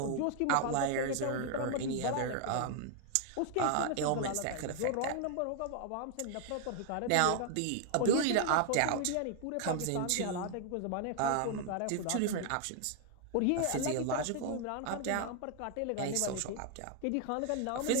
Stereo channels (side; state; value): both; different; correlation 0.00